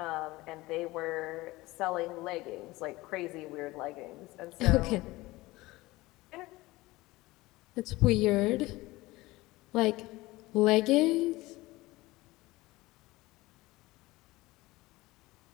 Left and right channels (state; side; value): quieter; right; 19.9 dB